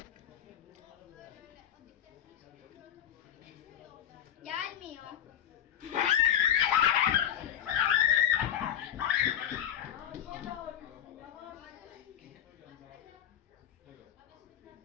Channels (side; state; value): right; quieter; 10.1 dB